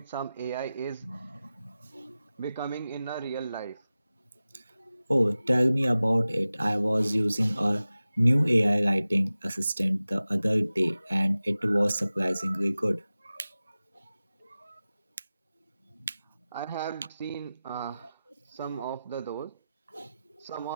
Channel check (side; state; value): both; inverted; correlation -0.96